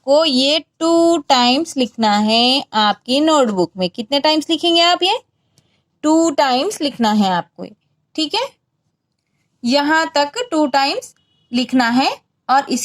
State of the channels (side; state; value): both; identical; correlation 1.00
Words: ये 2 टाइम्स लिखना है आपकी नोटबुक में। कितने टाइम्स लिखेंगे आप? ये 2 टाइम्स लिखना है आपको। ठीक है, यहाँ तक 2 टाइम्स लिखना है। और